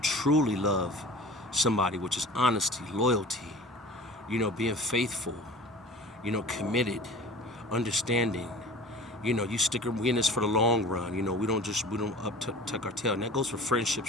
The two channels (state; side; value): normal; both; correlation 0.41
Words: truly love somebody, which is honesty, loyalty, you know, being faithful, you know, committed, understanding. You know, we in this for the long run. You know, we don't tuck our tail. And that goes for